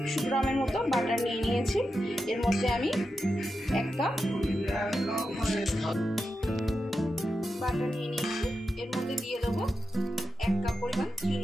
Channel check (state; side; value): normal; both; correlation 0.89